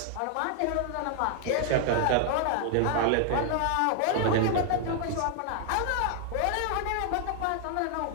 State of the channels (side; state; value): both; different; correlation 0.00